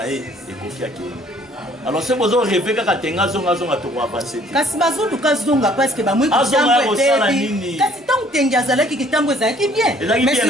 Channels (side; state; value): both; normal; correlation 0.58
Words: e kokia ke alors c'est besoin rêver kaka tenga zonga to ko avancer kasi bazulu kazonga parce que ba mwe kitambo etebi kasi tant tenga azalaki kitambo ezalaki bien mais